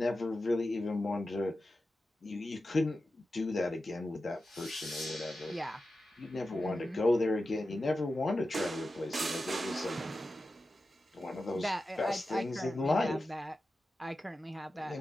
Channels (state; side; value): normal; both; correlation 0.92